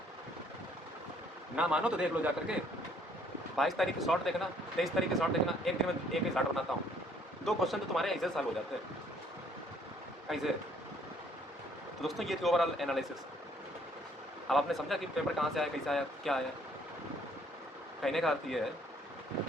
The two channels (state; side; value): normal; both; correlation 0.63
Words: ना मानो तो देख लो जा करके। 22 तारीख की शॉर्ट देखना, 23 तारीख की शॉर्ट देखना, एक दिन में एक ही शॉर्ट बनाता हूँ। 2 क्वेश्चन तो तुम्हारे ऐसे सॉल्व हो जाते हैं ऐसे। तो दोस्तों ये थी ओवरऑल एनालिसिस। अब आपने समझा कि पेपर कहाँ से आया, कैसे आया, क्या आया। कहने का अर्थ ये है